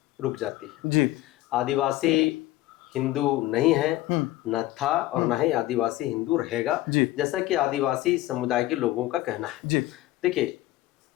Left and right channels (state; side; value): quieter; right; 16.7 dB